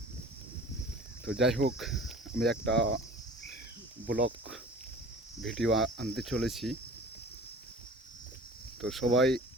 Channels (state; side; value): normal; both; correlation 0.43